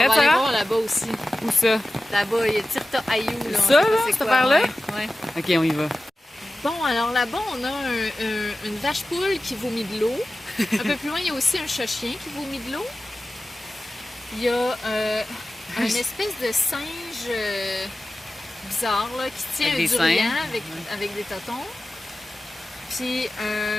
va aller voir là-bas aussi. Où ça? Là-bas, il y a Tirta Ayou. Là, ça, là, cette affaire-là? Ouais. OK, on y va. Bon, alors là-bas, on a une vache-poule qui vomit de l'eau. Un peu plus loin, il y a aussi un chat-chien qui vomit de l'eau. Il y a une espèce de singe bizarre là, qui tient un durian avec des totons. Puis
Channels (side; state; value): both; normal; correlation 0.95